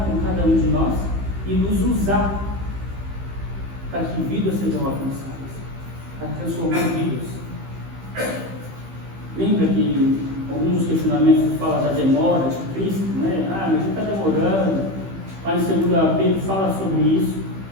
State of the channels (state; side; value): late; left; 15 ms